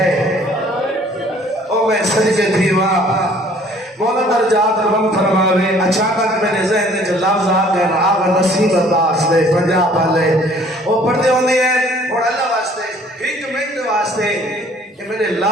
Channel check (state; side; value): normal; both; correlation 0.56